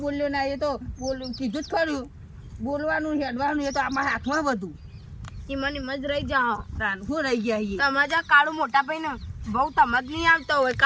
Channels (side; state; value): both; identical; correlation 1.00